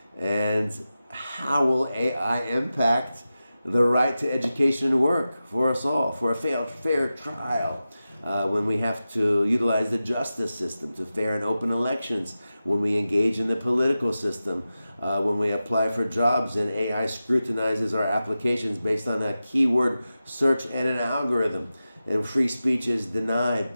And how will AI impact the right to education and work for us all, for a fair trial, when we have to utilize the justice system to fair and open elections, when we engage in the political system, when we apply for jobs and AI scrutinizes our applications based on a keyword search and an algorithm, and free speech is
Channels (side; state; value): both; inverted; correlation -0.93